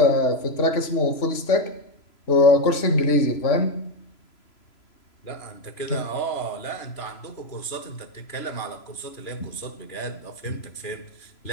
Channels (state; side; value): late; right; 3.0 ms